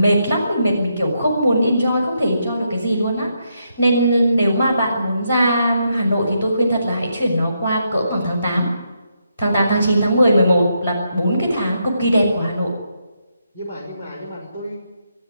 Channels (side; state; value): both; inverted; correlation -0.80